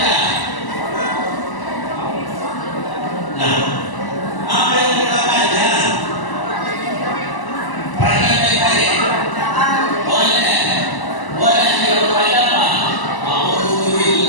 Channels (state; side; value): late; right; 1.0 ms